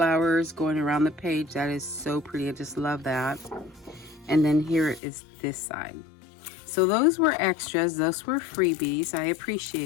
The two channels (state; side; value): drops out; right; at 5.0 s